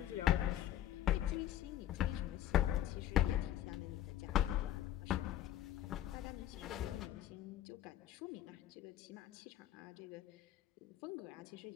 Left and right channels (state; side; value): quieter; right; 12.2 dB